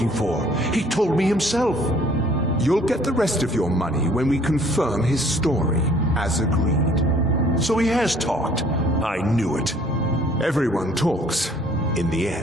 for. He told me himself. You'll get the rest of your money when we confirm his story, as agreed. So he has talked. I knew it. Everyone talks, in the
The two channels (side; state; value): both; normal; correlation 0.57